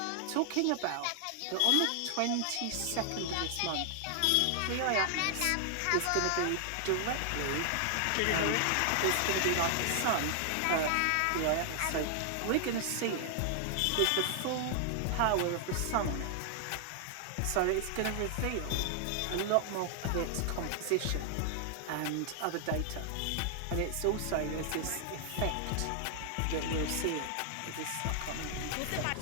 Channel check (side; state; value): both; different; correlation 0.00